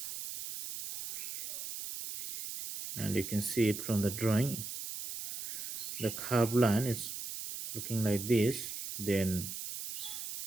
and you can see it from the drawing. The curved line is looking like this. Then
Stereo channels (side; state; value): right; noise; hiss, 7 dB below the sound